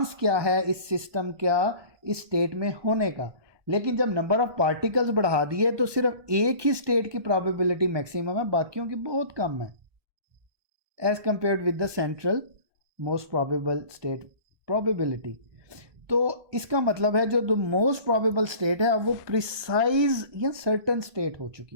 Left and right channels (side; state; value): left; late; 1.2 ms